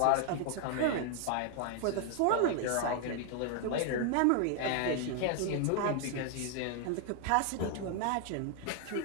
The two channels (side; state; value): both; different; correlation 0.00